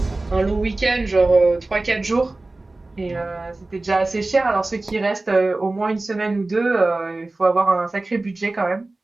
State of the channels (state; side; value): quieter; left; 3.0 dB